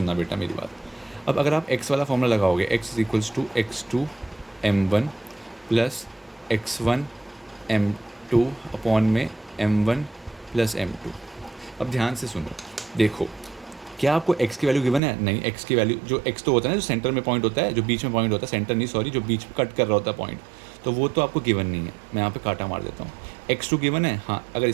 बेटा मेरी बात। अब अगर आप x वाला फॉर्मूला लगाओगे, x = x2 m1 plus x1 m2 upon में m1 प्लस m2। अब ध्यान से सुनो, देखो, क्या आपको x की वैल्यू गिवन है? नहीं, x की वैल्यू, जो x तो होता है ना, जो सेंटर में पॉइंट होता है, जो बीच में पॉइंट होता है, सेंटर नहीं सॉरी, जो बीच में कट कर रहा होता है पॉइंट, तो वो तो आपको गिवन नहीं है। मैं यहाँ पे काटा मार देता हूँ। x2 गिवन है, हाँ, अगर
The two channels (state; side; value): drops out; left; at 15.0 s